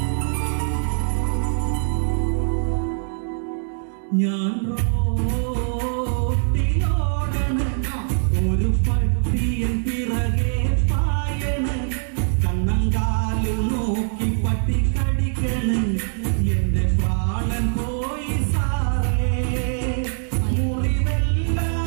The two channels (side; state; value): left; silent; digital silence